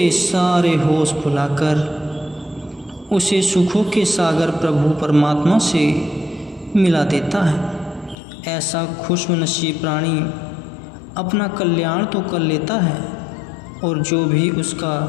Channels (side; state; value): right; drops out; at 8.2 s